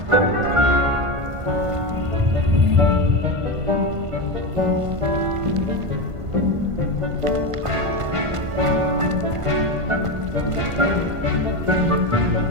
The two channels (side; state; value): left; late; 1.5 ms